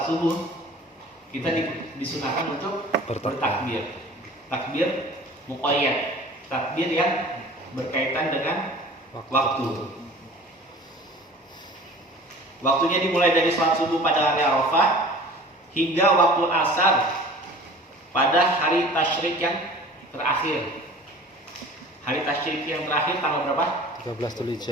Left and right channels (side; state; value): both; normal; correlation 0.44